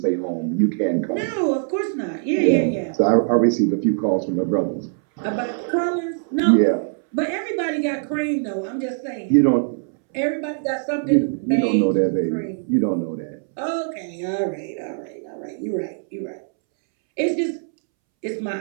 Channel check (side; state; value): left; silent; 64 dB below the other